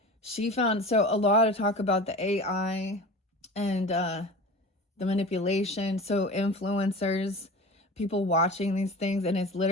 she found, so a lot of talk about the AI and the manipulation. So influencers, people watching these things, and it's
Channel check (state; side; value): normal; both; correlation 0.35